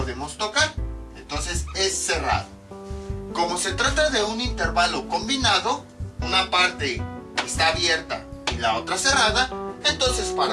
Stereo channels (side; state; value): both; identical; correlation 1.00